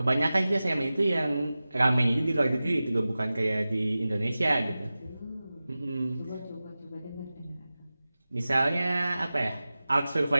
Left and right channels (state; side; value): inverted; both; correlation -0.96